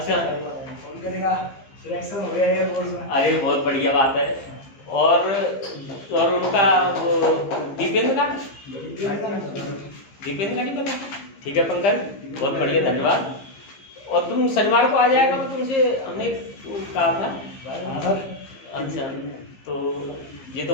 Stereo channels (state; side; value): late; right; 15 ms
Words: फोन करेगा, सिलेक्शन हो गया एयरफोर्स में। अरे बहुत बढ़िया बात है। और उनका वो दीपेंद्र का नहीं पता? ठीक है पंकज, बहुत बढ़िया, धन्यवाद। और तुम शनिवार को आ जाएगा तो तुमसे हमने कहा था। अच्छा, तो ये तो